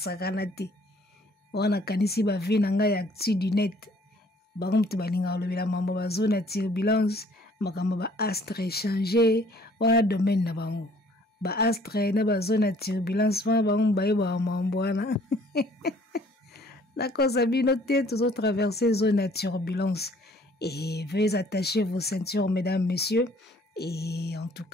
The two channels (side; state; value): both; normal; correlation 0.58